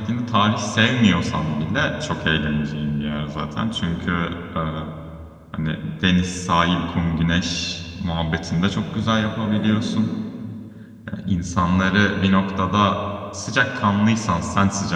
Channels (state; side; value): identical; both; correlation 1.00